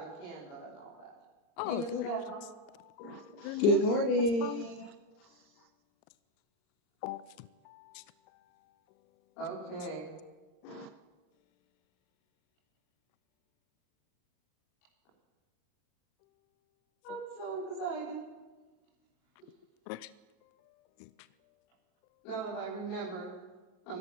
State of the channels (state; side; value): late; right; 39 ms